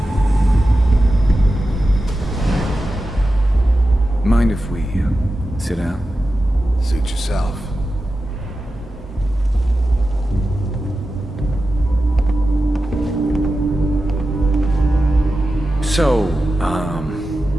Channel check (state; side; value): normal; both; correlation 0.92